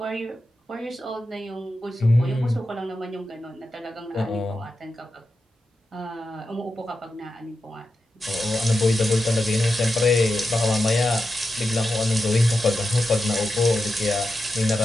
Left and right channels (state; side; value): normal; both; correlation 0.89